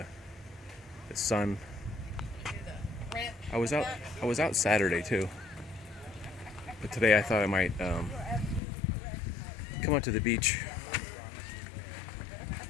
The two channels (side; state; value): right; drops out; at 8.6 s